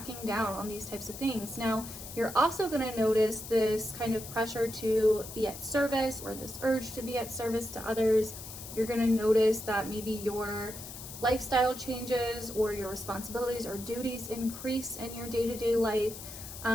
down on these types of things. Now, you're also going to notice this kind of pressure to be at service, or this urge to be at service to others. You're going to notice that maybe your lifestyle changes or your responsibilities or duties increase in your day-to-day life.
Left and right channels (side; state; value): left; noise; hiss, 12 dB below the sound